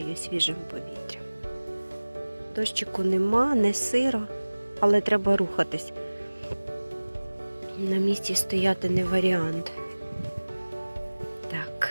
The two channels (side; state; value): both; inverted; correlation -1.00